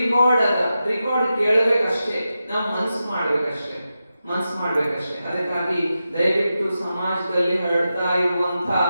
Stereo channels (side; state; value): both; inverted; correlation -0.90